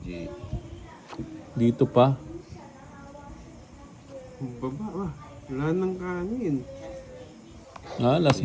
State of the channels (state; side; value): identical; both; correlation 1.00